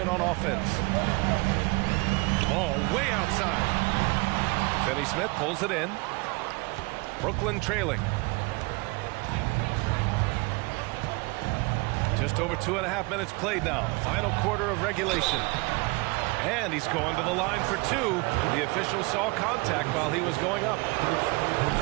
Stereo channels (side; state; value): left; quieter; 27.1 dB